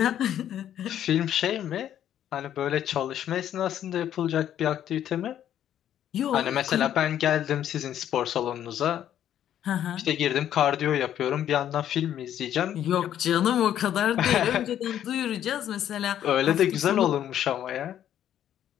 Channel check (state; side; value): quieter; right; 10.7 dB